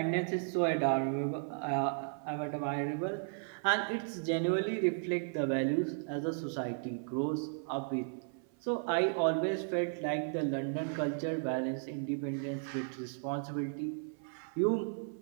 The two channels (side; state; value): left; silent; 55 dB below the other